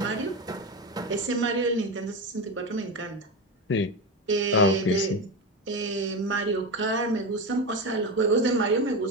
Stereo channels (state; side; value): normal; both; correlation 0.18